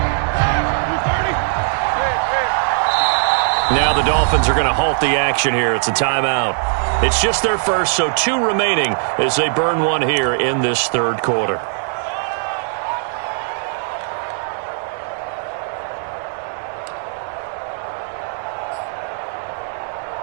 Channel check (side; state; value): left; silent; digital silence